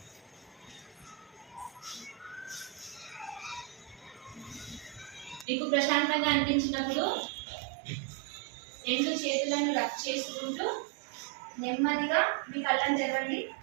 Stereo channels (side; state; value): left; drops out; at 5.5 s